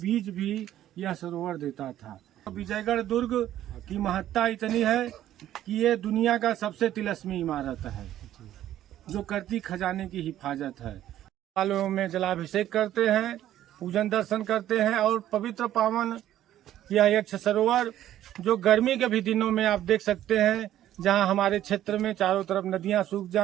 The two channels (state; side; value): quieter; left; 12.4 dB